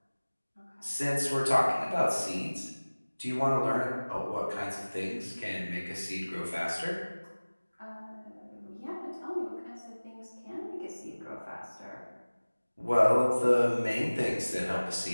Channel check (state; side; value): inverted; both; correlation -1.00